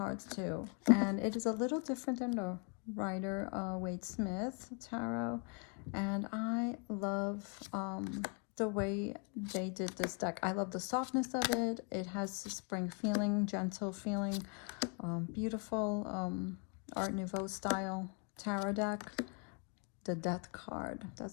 too. And it is a little different than the Rider Waite Smith tarot. And I love the way they did this deck. I love the softness of it. It has a spring feeling, gentle feeling, beautiful Art Nouveau style tarot deck. The Death card,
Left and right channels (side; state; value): right; quieter; 35.9 dB